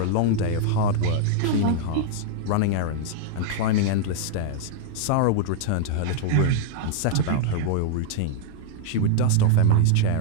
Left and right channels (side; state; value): both; different; correlation -0.01